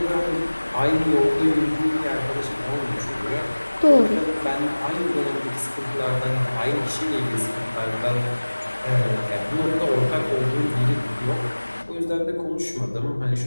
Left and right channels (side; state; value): both; inverted; correlation -1.00